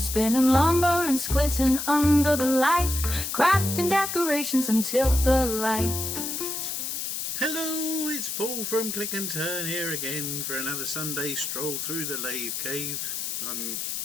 lumber and squinting under the light, crafting decorations until the light. Hello, it's Paul from Click and Turn here again for another Sunday stroll through the lathe cave. I'm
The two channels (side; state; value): left; noise; hiss, 4 dB below the sound